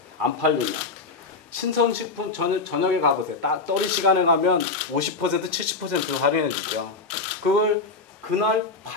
안 팔리면. 신선식품 저녁에 가보세요. 떨이 시간에 가면 50% 70% 할인해 주죠. 그걸 그날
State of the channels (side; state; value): right; quieter; 4.0 dB